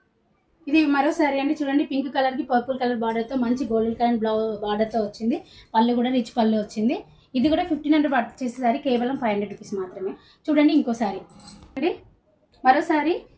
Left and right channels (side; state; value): both; identical; correlation 1.00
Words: ఇది మరో శారీ అండి. చూడండి పింక్ కలర్కి పర్పుల్ కలర్ బార్డర్తో మంచి గోల్డెన్ కలర్ బార్డర్తో వచ్చింది. పళ్ళు కూడా రిచ్ పళ్ళు వచ్చింది. ఇది కూడా 1500 పర్చేస్ చేసే శారీ కేవలం 500 రూపీస్ మాత్రమే. చూడండి ఇంకో శారీ అండి. మరో శారీ